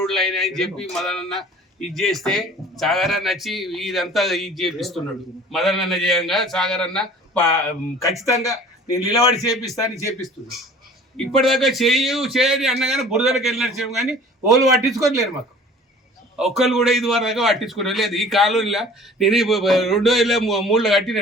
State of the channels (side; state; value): both; normal; correlation 0.47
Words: అయినాయని చెప్పి మదనన్న ఇది చేస్తే సాగర్ అన్న వచ్చి ఇదంతా ఇది చేపిస్తున్నాడు. మదన్ అన్న చేయంగా సాగర్ అన్న ఖచ్చితంగా నేను నిలబడి చేపిస్తాను చేపిస్తున్నాడు. ఇప్పటిదాకా చేయని అన్నగానే బురదలకు వెళ్ళినట్టు కానీ వాళ్ళు పట్టించుకోలేరు. మాకు ఒక్కరు కూడా ఇది వరకు పట్టించుకోవడం లేదు. ఈ కాలనీలో నేను 2003లో కట్టిన